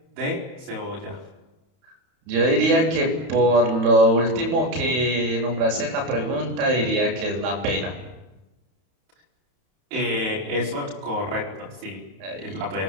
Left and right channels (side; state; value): left; late; 31 ms